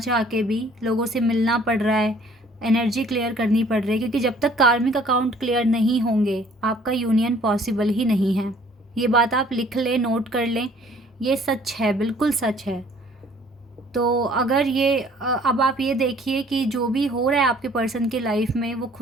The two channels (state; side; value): normal; both; correlation 0.56